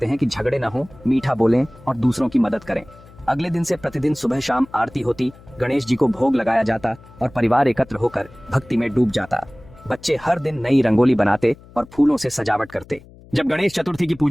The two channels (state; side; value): noise; left; hum, 23 dB below the sound